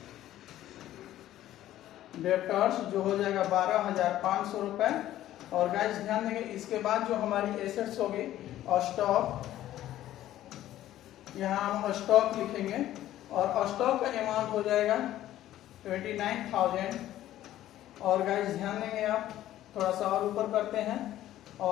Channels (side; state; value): right; quieter; 13.4 dB